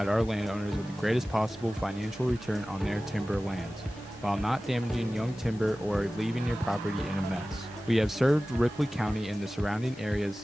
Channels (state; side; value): normal; both; correlation 0.96